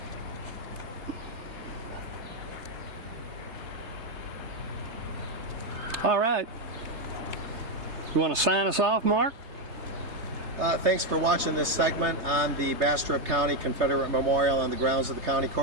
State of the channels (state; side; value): late; left; 3.3 ms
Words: All right. You want to sign us off, Mark? Thanks for watching this segment on the Bastrop County Confederate Memorial on the grounds of the county